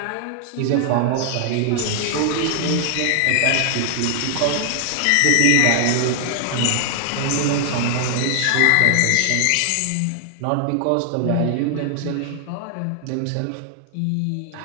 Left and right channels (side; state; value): both; different; correlation 0.00